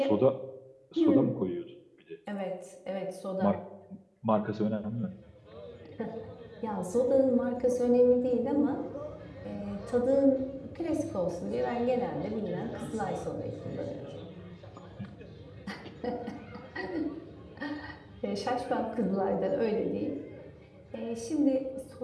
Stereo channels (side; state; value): both; identical; correlation 1.00